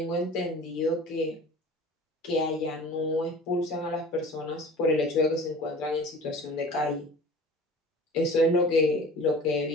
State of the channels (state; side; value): normal; both; correlation 0.41